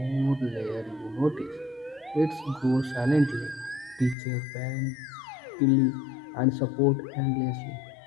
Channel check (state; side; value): drops out; right; at 4.2 s